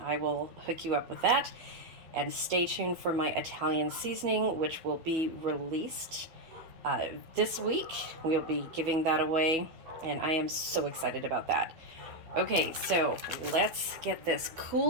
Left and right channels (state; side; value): late; left; 12 ms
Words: will hook you up with that. And stay tuned for my Italian seasoning, which will be released this week. We'll be giving that away, and I am so excited about that. Okay, so let's get this